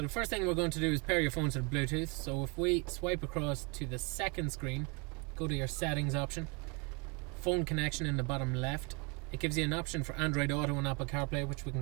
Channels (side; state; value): left; quieter; 31.4 dB